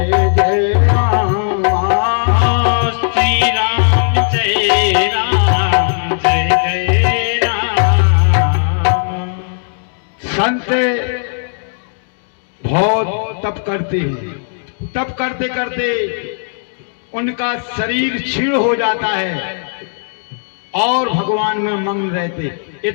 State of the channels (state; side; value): silent; right; digital silence